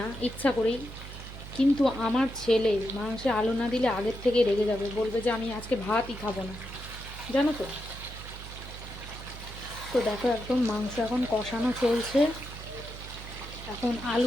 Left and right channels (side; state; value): right; noise; hum, 12 dB below the sound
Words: ইচ্ছা করেই, কিন্তু আমার ছেলে মাংসে আলু না দিলে আগের থেকে রেগে যাবে, বলবে যে আমি আজকে ভাতই খাবো না, জানো তো। তো দেখো একদম মাংস এখন কষানো চলছে। এখন